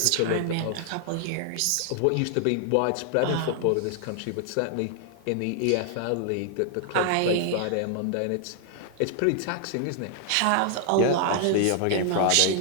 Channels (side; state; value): both; different; correlation 0.00